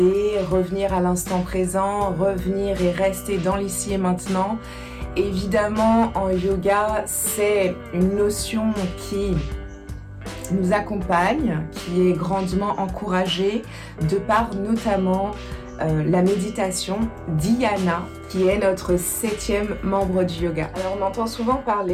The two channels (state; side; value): identical; both; correlation 1.00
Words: revenir à l'instant présent, revenir et rester dans l'ici et maintenant. Évidemment, en yoga, c'est une notion qui nous accompagne, qui est grandement encouragée de par notamment la méditation dhyana, qui est notre 7e membre du yoga. Alors on entend souvent